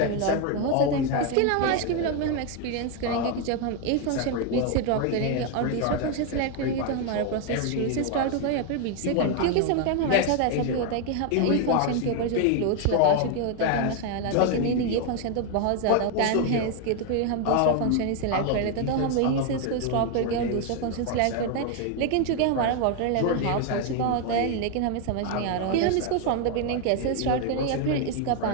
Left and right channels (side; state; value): both; different; correlation 0.01